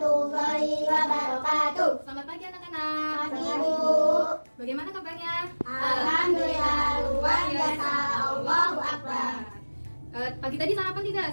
wabarakatuh. Selamat pagi anak-anak. Pagi, Bu. Bagaimana kabarnya? Alhamdulillah luar biasa. Allahu Akbar. Pagi tadi sarapan tidak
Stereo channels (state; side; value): inverted; both; correlation -1.00